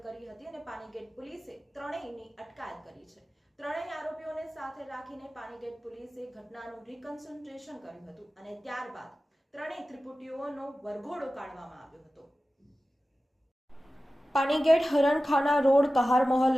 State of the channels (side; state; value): both; normal; correlation 0.95